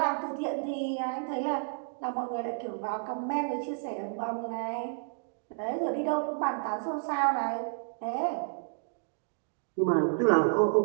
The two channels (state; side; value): silent; left; digital silence